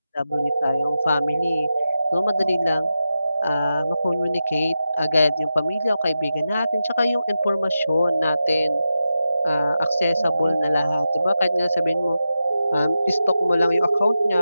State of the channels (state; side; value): inverted; both; correlation -0.90